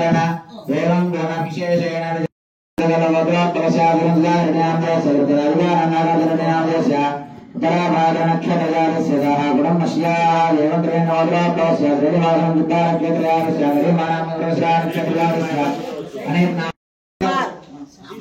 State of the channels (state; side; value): identical; both; correlation 1.00